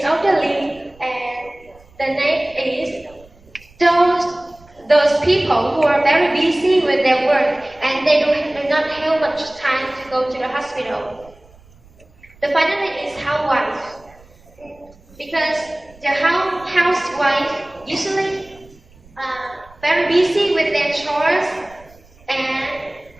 elderly, and the next is those people who are very busy with their work and they do not have much time to go to the hospital. The finally is housewife, because the housewife usually very busy with their chores, and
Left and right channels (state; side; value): noise; right; rumble, 26 dB below the sound